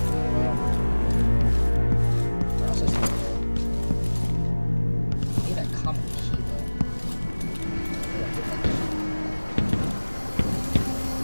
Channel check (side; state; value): both; inverted; correlation -1.00